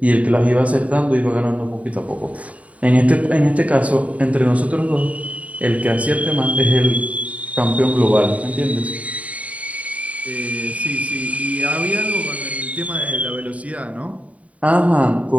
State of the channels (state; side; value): late; left; 0.068 ms